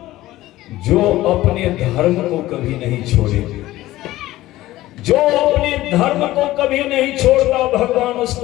जो अपने धर्म को कभी नहीं छोड़े, जो अपने धर्म को कभी नहीं छोड़ता, भगवान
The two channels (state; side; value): quieter; right; 16.3 dB